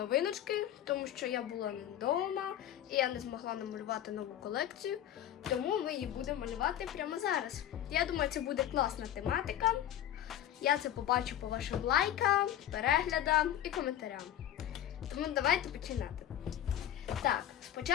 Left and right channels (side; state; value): right; quieter; 11.4 dB